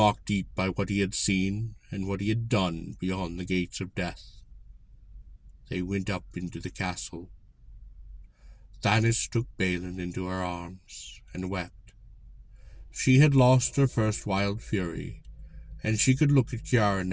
deep by what he had seen and what he had done beyond the gates of death. They went up into the castle. Thanis took Balin into her arms and wept. She had lost her first wild fury, and she could look at Kiara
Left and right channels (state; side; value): identical; both; correlation 1.00